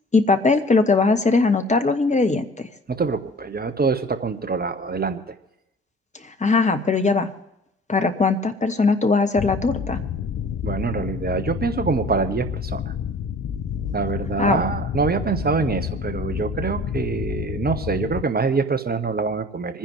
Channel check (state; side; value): normal; both; correlation 0.47